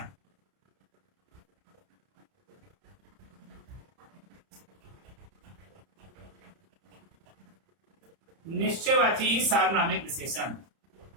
निश्चयवाची सार्वनामिक विशेषण।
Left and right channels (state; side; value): late; left; 31 ms